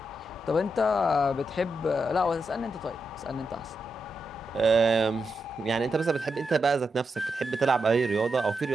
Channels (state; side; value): normal; both; correlation 0.85